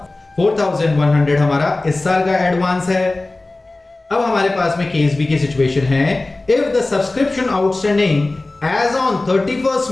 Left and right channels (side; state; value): right; quieter; 3.0 dB